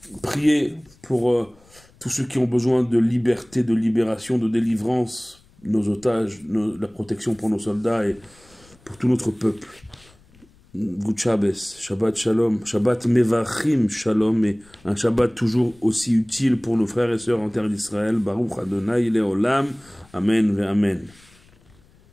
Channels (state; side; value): noise; left; rumble, 29 dB below the sound